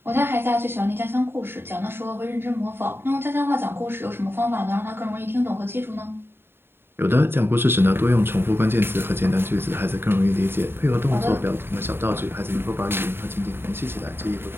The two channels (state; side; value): late; left; 0.11 ms